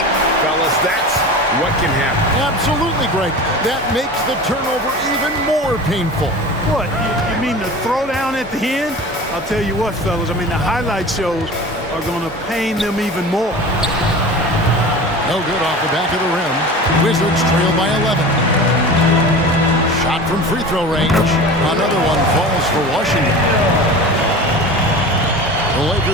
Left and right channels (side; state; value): both; normal; correlation 0.35